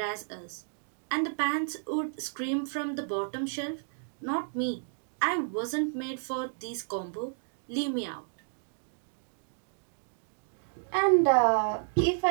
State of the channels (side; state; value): left; silent; digital silence